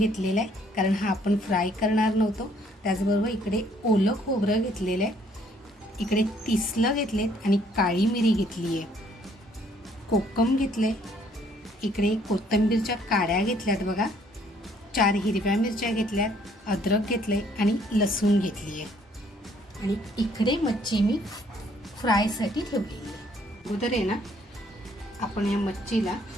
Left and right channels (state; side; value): normal; both; correlation 0.64